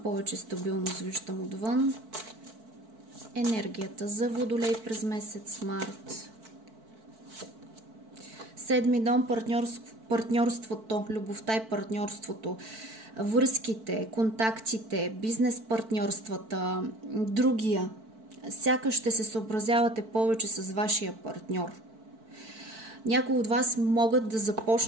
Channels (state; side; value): late; left; 4.5 ms